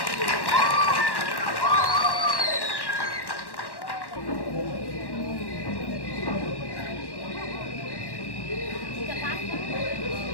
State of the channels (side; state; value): right; late; 1.1 ms